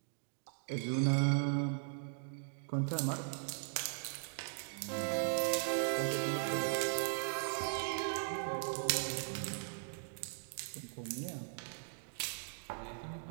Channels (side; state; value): left; silent; digital silence